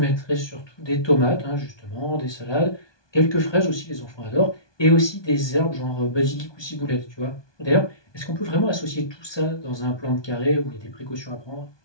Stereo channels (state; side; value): late; right; 1.2 ms